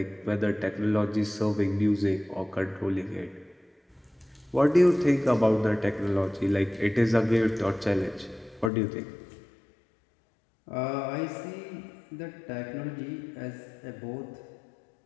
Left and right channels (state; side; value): drops out; right; at 8.7 s